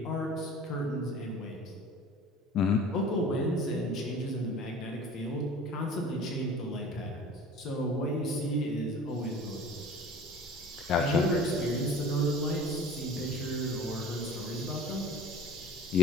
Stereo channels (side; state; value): both; normal; correlation 0.42